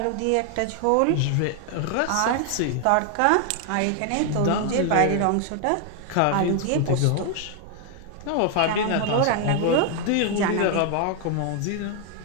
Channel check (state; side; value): different; both; correlation 0.00